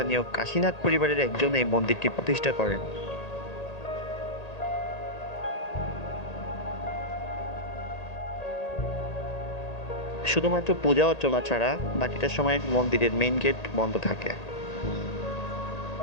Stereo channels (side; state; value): right; late; 1.8 ms